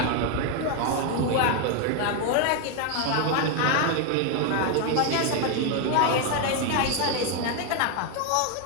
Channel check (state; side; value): different; both; correlation 0.01